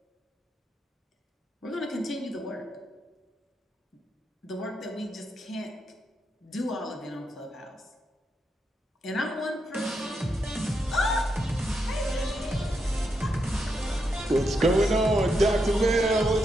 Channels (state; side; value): normal; both; correlation 0.83